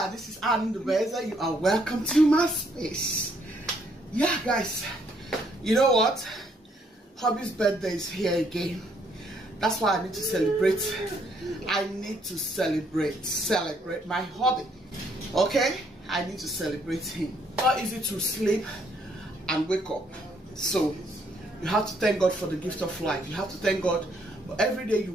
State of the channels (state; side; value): normal; both; correlation 0.69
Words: this is Anne the Beza. You are welcome to my space. Yeah, guys, you know what? Hubby's birthday is here again. That's why I need to celebrate. I need to celebrate my hubby. Okay? I need to celebrate him. Not easy to sleep and wake up. So you have to thank God for the gift of life. You have to thank God for every day you